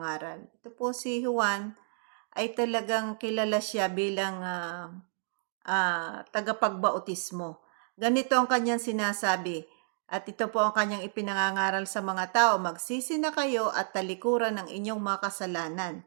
Ito po si Juan ay talagang kilala siya bilang tagapagbautismo. Ganito ang kanyang sinasabi, at ito po ang kanyang ipinangangaral sa mga tao, magsisi na kayo at talikuran ng inyong mga kasalanan,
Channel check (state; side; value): silent; left; digital silence